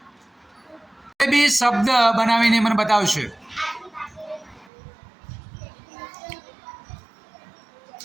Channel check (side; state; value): left; drops out; at 4.7 s